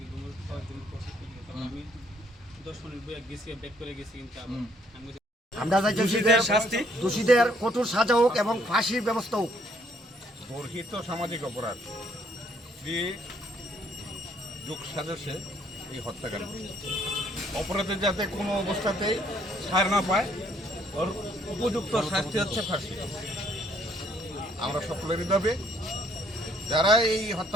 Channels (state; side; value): normal; both; correlation 0.66